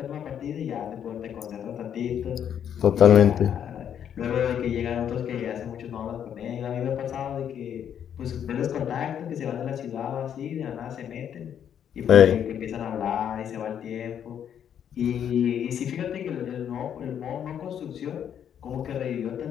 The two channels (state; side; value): quieter; right; 9.0 dB